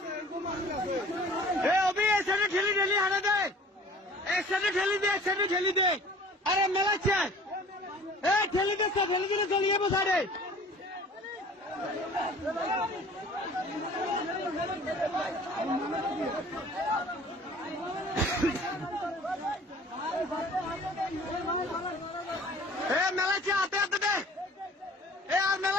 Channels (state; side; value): normal; both; correlation 0.48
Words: অভি এক সাইডে ঠেলি ঠেলি হারা দে, এক সাইডে ঠেলি দে, এক সাইডে ঠেলি দে। আরে মেলাচ্ছে ঠেলি দিচ্ছে, ঠেলি দিলে চলিয়ে বসারে। মেলাচ্ছে হাতে হাতে দে, আর